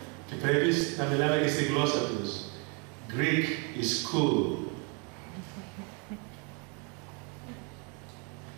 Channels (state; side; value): quieter; left; 34.7 dB